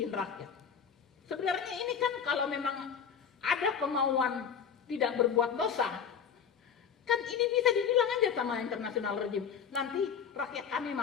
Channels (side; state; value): right; quieter; 7.3 dB